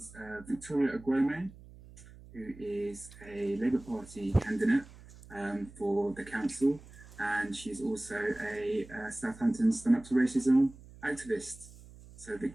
Victoria Agwome, who is a Labour Party candidate for the council, and she's also a Southampton Stand Up to Racism activist. So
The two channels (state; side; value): noise; right; hum, 19 dB below the sound